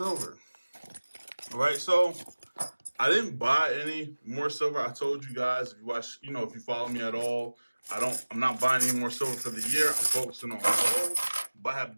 All right, so I didn't buy any more silver. I told you guys if you watch, if you follow me at all, I'm not buying any more silver for the year. I'm focusing on gold. But I have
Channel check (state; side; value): inverted; both; correlation -1.00